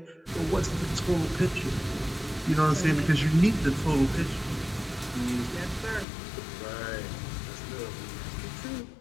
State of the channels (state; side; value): drops out; right; at 6.1 s